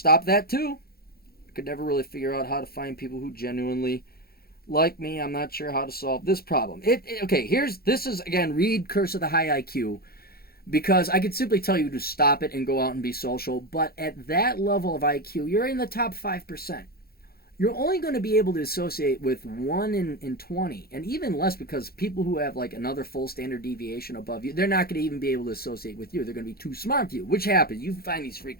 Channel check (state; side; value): late; right; 0.44 ms